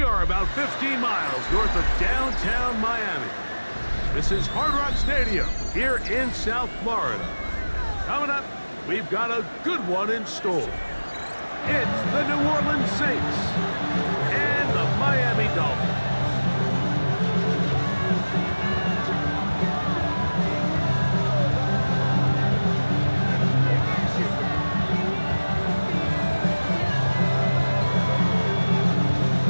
are about 15 miles north of downtown Miami. This is Hard Rock Stadium here in South Florida. Coming up, we've got a good one in store. It's the New Orleans Saints and the Miami Dolphins.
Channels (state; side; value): inverted; both; correlation -1.00